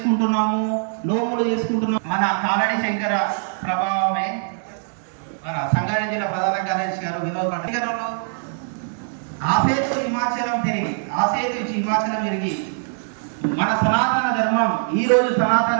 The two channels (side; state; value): left; silent; digital silence